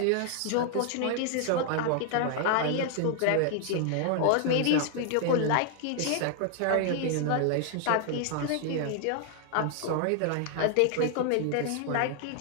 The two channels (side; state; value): both; different; correlation 0.00